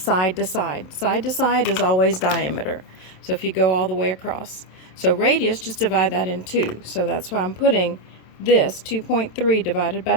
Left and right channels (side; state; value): right; late; 27 ms